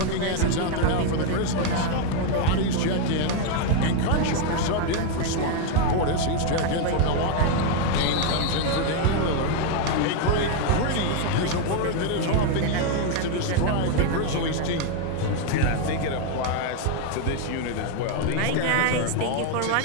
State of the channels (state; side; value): different; both; correlation 0.01